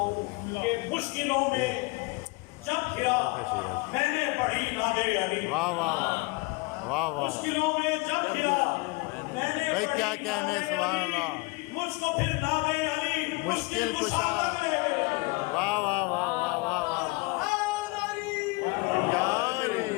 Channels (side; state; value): right; quieter; 25.8 dB